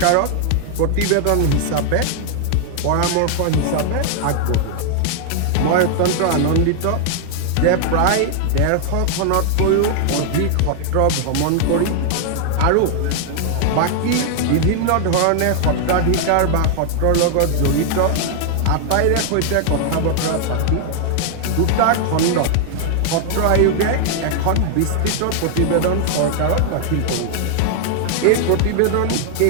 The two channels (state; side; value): different; both; correlation 0.00